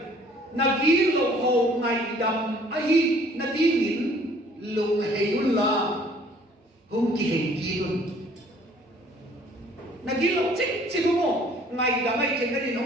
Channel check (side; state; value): both; normal; correlation 0.56